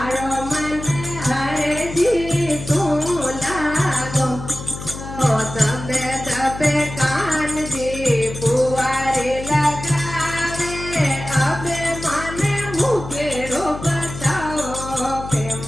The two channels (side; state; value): left; noise; hum, 10 dB below the sound